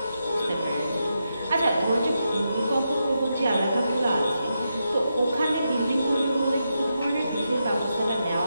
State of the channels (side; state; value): both; inverted; correlation -0.85